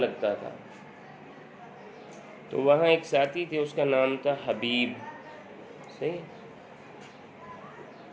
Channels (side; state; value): both; identical; correlation 1.00